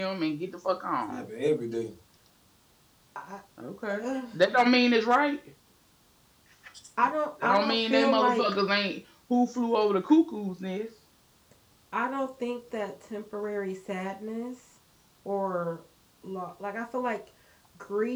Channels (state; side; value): identical; both; correlation 1.00